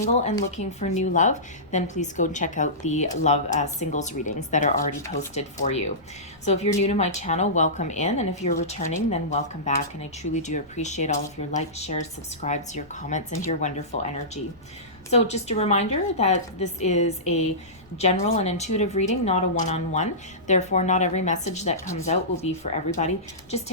and looking for new love, then please go and check out the love singles readings that are already posted for you. So if you're new to my channel, welcome in, and if you're returning, then welcome back, and I truly do appreciate all of your likes, shares, subscribes, your comments, and your wonderful energy. So just a reminder that this is a general and intuitive reading, not a one-on-one. Therefore, not every message that comes out will be for everybody. Just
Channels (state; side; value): noise; left; rumble, 29 dB below the sound